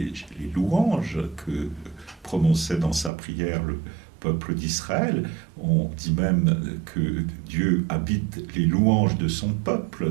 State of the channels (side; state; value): left; drops out; at 3.1 s